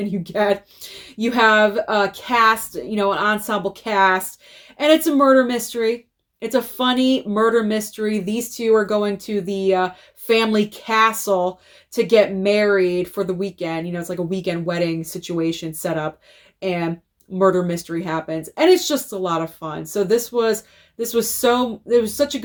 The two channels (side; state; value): both; identical; correlation 1.00